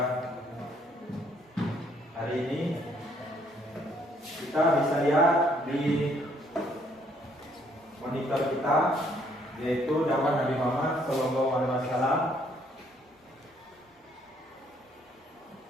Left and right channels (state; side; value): normal; both; correlation 0.66